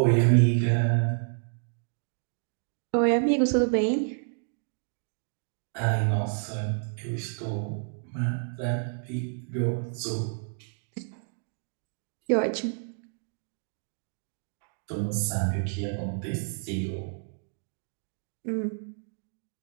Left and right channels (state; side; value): silent; left; digital silence